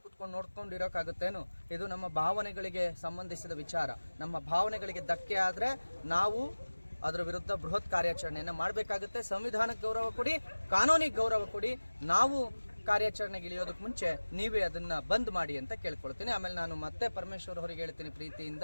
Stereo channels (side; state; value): both; inverted; correlation -1.00